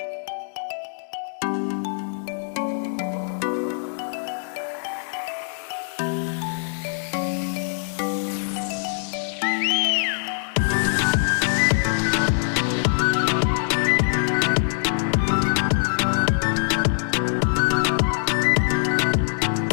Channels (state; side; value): silent; right; digital silence